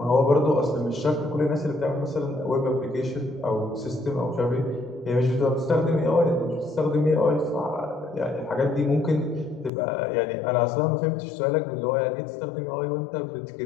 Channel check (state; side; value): drops out; right; at 9.7 s